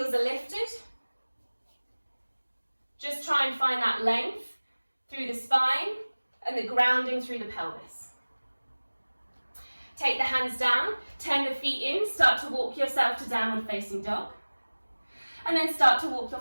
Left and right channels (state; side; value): inverted; both; correlation -1.00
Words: are lifted. Just try and find that length through the spine and the grounding through the pelvis. Take the hands down, turn the feet in, start to walk yourself to downward facing dog. And then start to walk